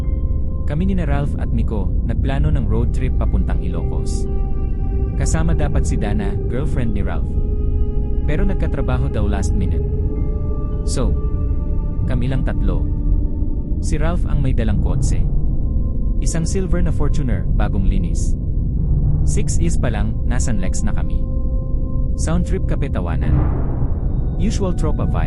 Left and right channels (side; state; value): both; identical; correlation 1.00